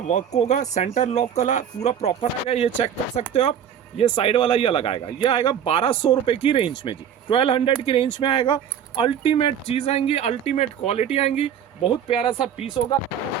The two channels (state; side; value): quieter; left; 8.7 dB